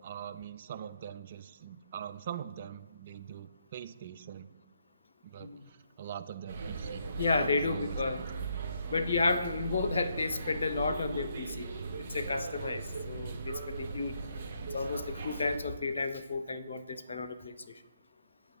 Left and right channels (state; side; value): inverted; both; correlation -0.75